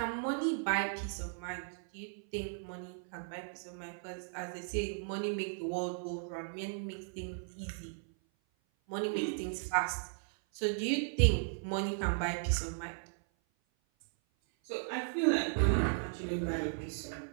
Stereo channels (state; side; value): silent; left; 54 dB below the other